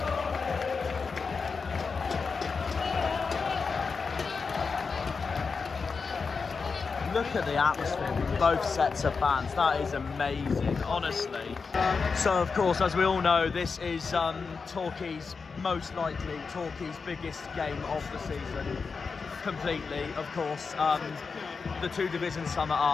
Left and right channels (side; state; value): right; quieter; 5.0 dB